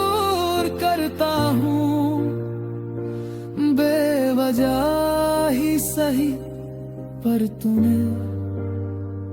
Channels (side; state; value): both; identical; correlation 1.00